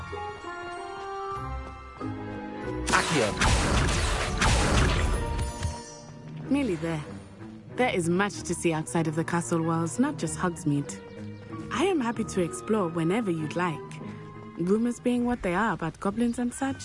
Accio. Nearly there. There is much to see outside of the castle walls, not just Hogsmeade. I am happy to explore whenever you'd like. Rumors being what they are about goblins and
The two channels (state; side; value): identical; both; correlation 1.00